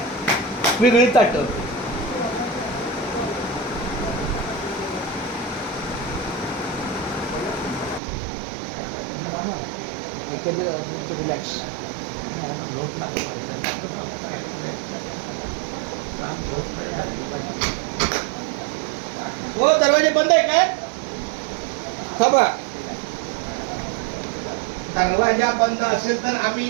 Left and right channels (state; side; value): drops out; left; at 8.0 s